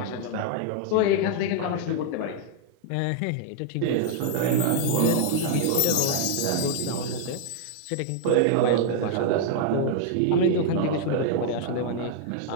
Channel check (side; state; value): both; different; correlation 0.00